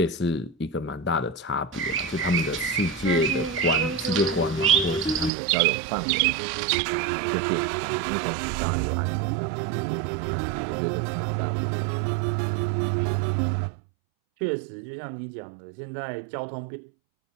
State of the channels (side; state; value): left; drops out; at 5.3 s